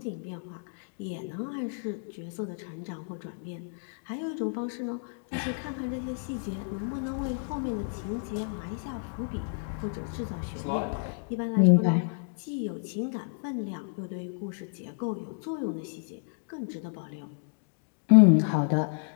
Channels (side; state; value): right; silent; digital silence